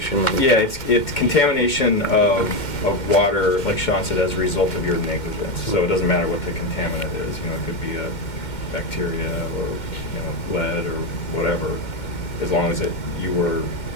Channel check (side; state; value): right; late; 2.1 ms